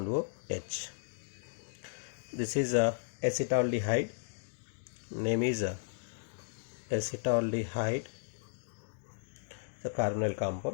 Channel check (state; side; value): silent; right; digital silence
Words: O H. This is a acetaldehyde. Name is acetaldehyde, the carbonyl